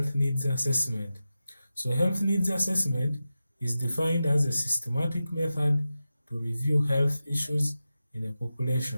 needs assessment? So health needs assessment is defined as a systematic method to review health issues in a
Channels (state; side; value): inverted; both; correlation -0.93